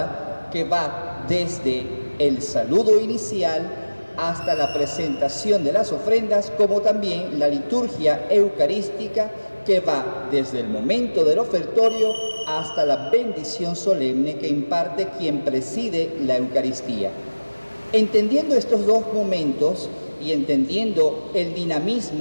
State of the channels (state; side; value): inverted; both; correlation -1.00